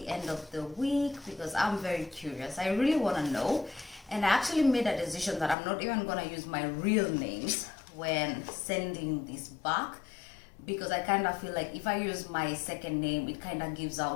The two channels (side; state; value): right; drops out; at 5.6 s